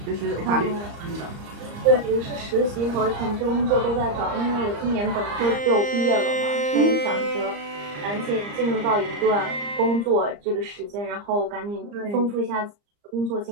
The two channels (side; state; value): left; late; 34 ms